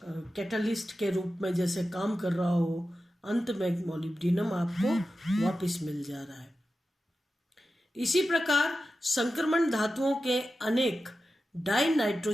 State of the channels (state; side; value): normal; both; correlation 0.92